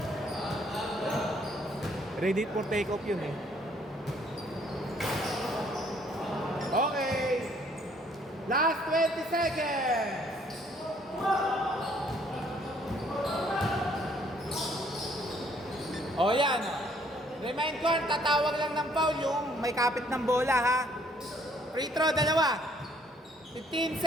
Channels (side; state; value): both; normal; correlation 0.64